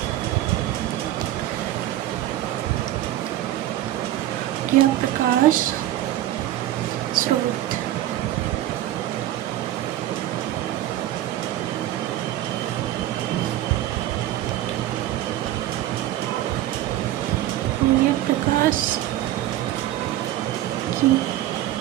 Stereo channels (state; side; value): quieter; left; 13.7 dB